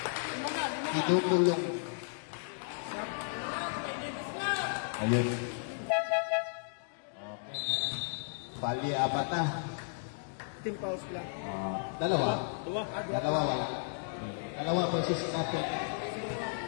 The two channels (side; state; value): right; silent; digital silence